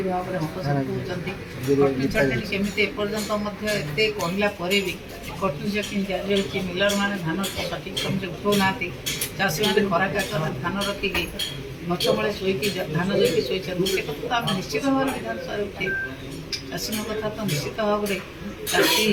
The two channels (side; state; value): both; identical; correlation 1.00